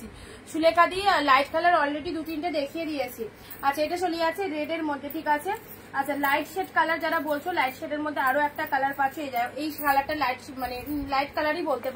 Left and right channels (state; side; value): identical; both; correlation 1.00